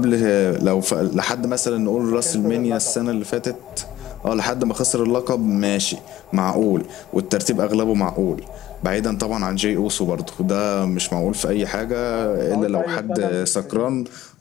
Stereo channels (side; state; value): right; quieter; 14.4 dB